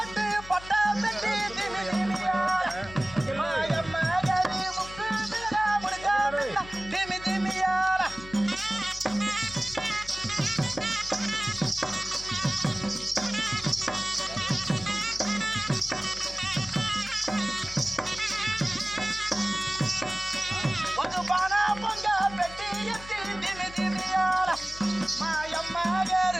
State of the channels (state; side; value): noise; left; hum, 16 dB below the sound